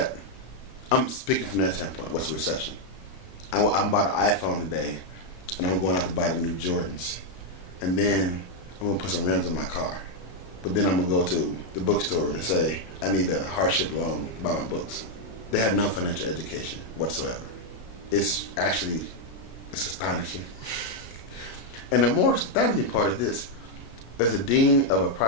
I'm speaking from that standpoint. What's a recession? I'm bought an iPhone today, and I'm going out to buy the new Jordans. And then I'm going to put some rims in my car. But then I'm going to go to the bookstore and say, I need a hardship loan to buy my books. They have no financial education whatsoever. It's astonishing. And the more astonishing part is this. As a dean of a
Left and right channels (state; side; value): late; right; 34 ms